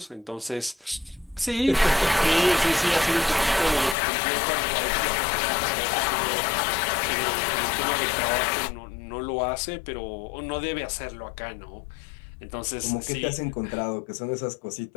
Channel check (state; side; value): drops out; right; at 4.0 s